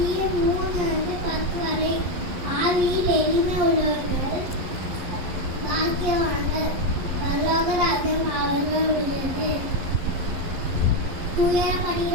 வரை ஆவியில் எளிமை உள்ளவர்கள் பாக்கியவான்கள், பரலோக ராஜ்யம் அவர்கள் உள்ளது.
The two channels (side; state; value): left; late; 11 ms